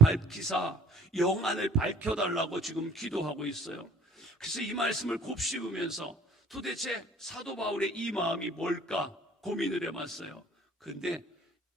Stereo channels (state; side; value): normal; both; correlation 0.52